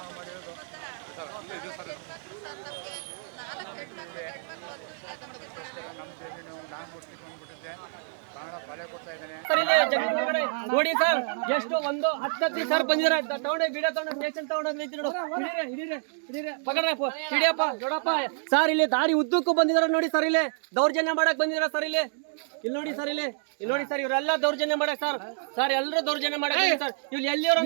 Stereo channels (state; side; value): silent; left; digital silence